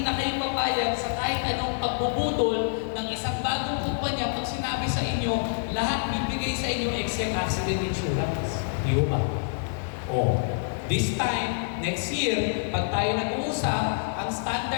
na kayo papayag sa kahit anong pagbubudol ng isang bagong kumpanya pag sinabi sa inyo, lahat bibigay sa inyo except accident insurance. Di ba? Oh. This time, next year, pag tayo nag-uusap, ang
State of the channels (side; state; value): right; silent; digital silence